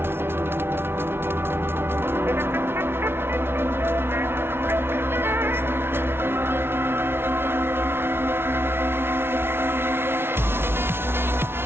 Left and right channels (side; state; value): left; late; 0.12 ms